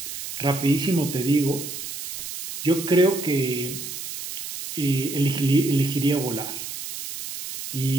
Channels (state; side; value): noise; right; hiss, 8 dB below the sound